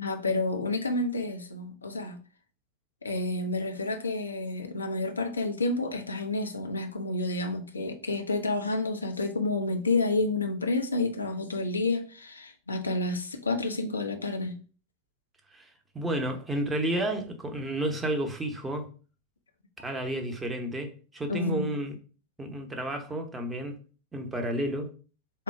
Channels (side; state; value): both; inverted; correlation -0.31